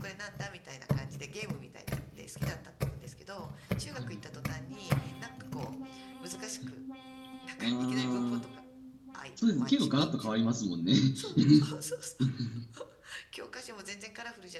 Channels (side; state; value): both; identical; correlation 1.00